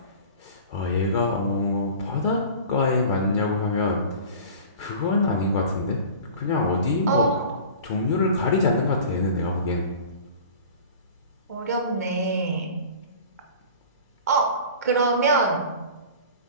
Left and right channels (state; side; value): inverted; both; correlation -0.40